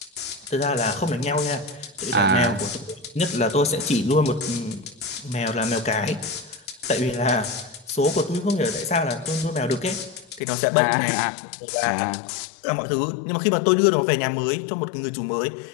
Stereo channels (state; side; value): drops out; right; at 10.4 s